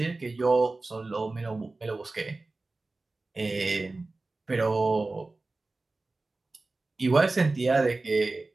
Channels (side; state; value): left; quieter; 3.3 dB